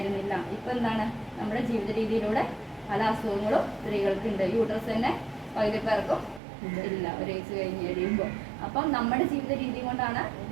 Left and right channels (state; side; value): drops out; left; at 6.4 s